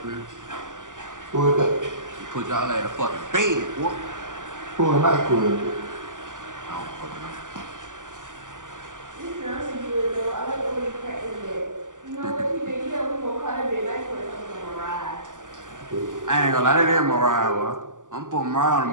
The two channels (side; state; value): left; late; 0.87 ms